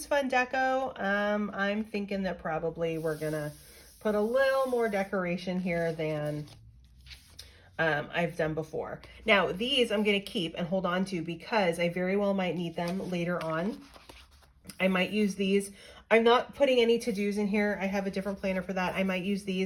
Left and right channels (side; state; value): both; identical; correlation 1.00